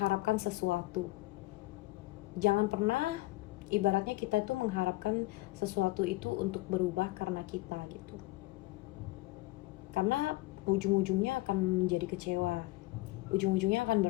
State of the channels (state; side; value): quieter; right; 19.8 dB